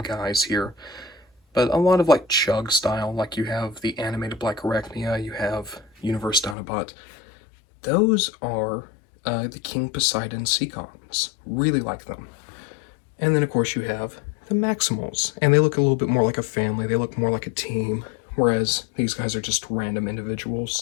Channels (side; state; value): right; drops out; at 6.6 s